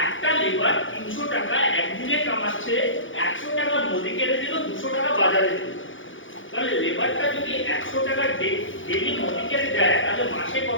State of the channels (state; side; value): late; right; 0.57 ms